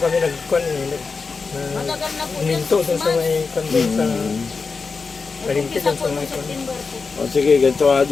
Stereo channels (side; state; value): right; quieter; 4.7 dB